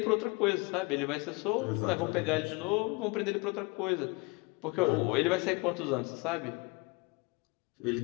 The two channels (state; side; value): quieter; right; 27.3 dB